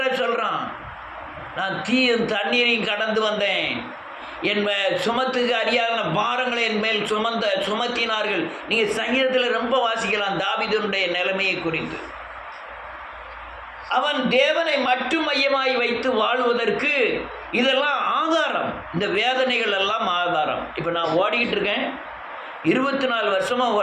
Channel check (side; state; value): both; identical; correlation 1.00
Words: சொல்கிறான். நான் தீயும் தண்ணீரையும் கடந்து வந்தேன், என் சுமத்துக்கு அறியாத பாரங்களை என் மேல் சுமத்தினார்கள். நீங்கள் சங்கீதத்தில் ரொம்ப வாசிக்கலாம் தாவீதுடைய நிலைமையை குறித்து. அவன் தேவனை மட்டும் மையமாய் வைத்து வாழ்வதற்கு இதெல்லாம் ஆதாரம். இந்த வேதனைகள் எல்லாம் ஆதாரம். இப்போ நான் ஓடிக்கிட்டு இருக்கேன், 24 வருஷமாக